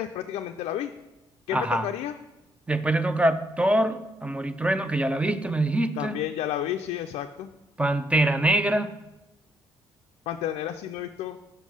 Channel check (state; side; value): normal; both; correlation 0.72